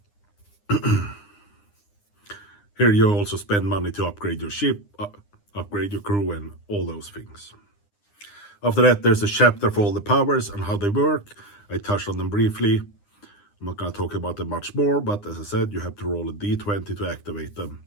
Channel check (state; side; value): late; right; 9.8 ms